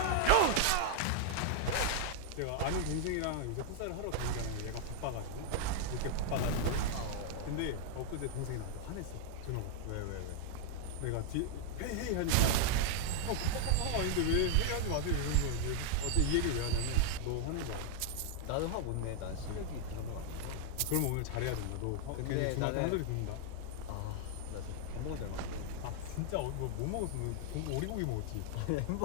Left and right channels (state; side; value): different; both; correlation 0.00